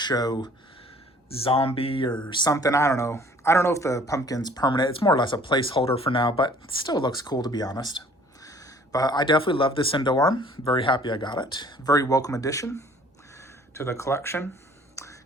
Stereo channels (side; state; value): both; normal; correlation 0.54